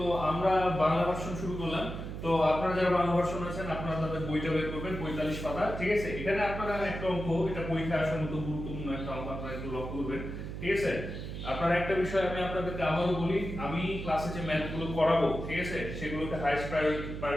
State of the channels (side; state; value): right; noise; hum, 7 dB below the sound